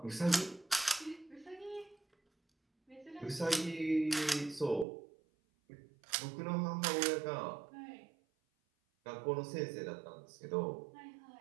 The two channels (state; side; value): drops out; left; at 4.9 s